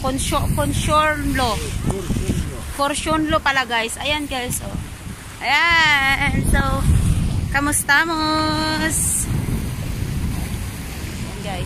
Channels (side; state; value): both; identical; correlation 1.00